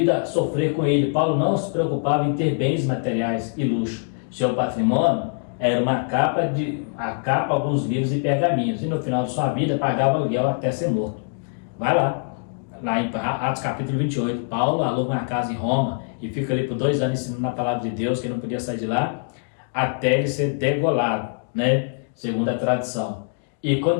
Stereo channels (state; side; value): silent; right; digital silence